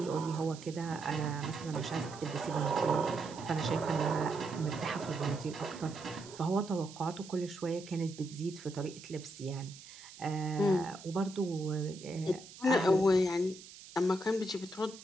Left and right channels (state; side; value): noise; right; hiss, 17 dB below the sound